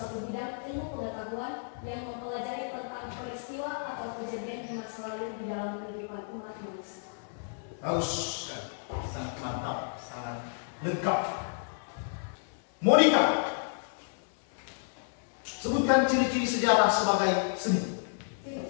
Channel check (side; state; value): right; silent; digital silence